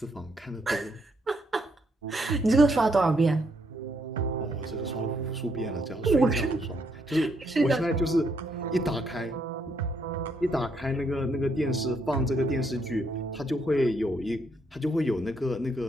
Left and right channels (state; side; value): normal; both; correlation 0.74